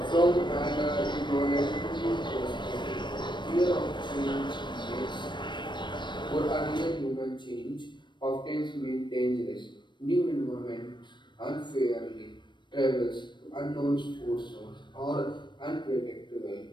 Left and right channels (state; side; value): late; right; 0.22 ms